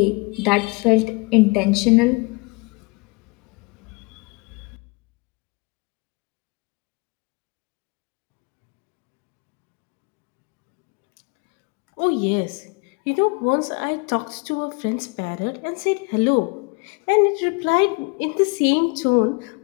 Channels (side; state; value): right; quieter; 28.0 dB